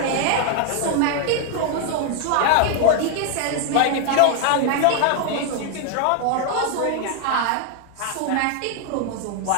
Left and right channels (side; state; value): both; different; correlation 0.00